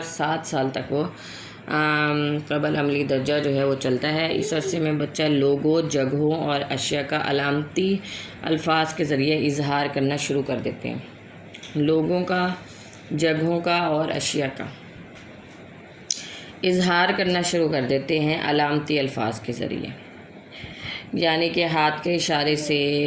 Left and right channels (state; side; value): identical; both; correlation 1.00